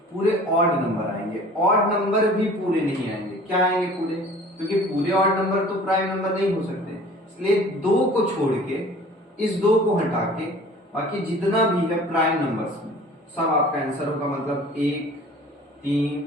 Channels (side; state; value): both; normal; correlation 0.47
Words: पूरे ऑड नंबर आएंगे। ऑड नंबर भी पूरे नहीं आएंगे, क्या आएंगे पूरे, क्योंकि पूरे ऑड नंबर तो प्राइम नंबर नहीं हो सकते, इसलिए 2 को छोड़ के, इस 2 को हटा के बाकी जितना भी है प्राइम नंबर्स में सब आपका आंसर होगा। मतलब 1 3